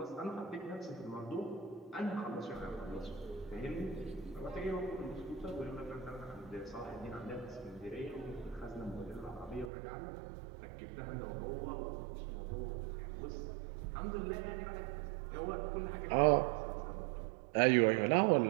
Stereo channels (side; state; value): left; drops out; at 9.7 s